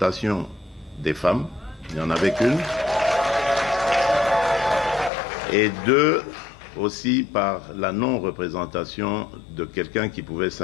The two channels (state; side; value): drops out; right; at 5.1 s